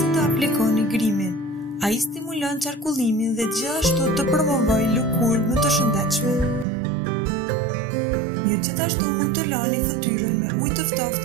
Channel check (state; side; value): drops out; left; at 6.7 s